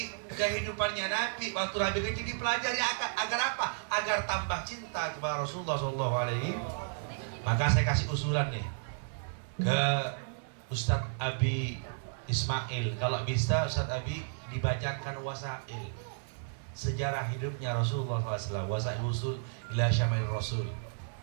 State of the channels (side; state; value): left; silent; 56 dB below the other